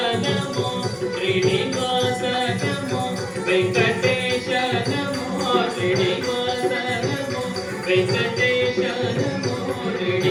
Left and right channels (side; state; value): both; identical; correlation 1.00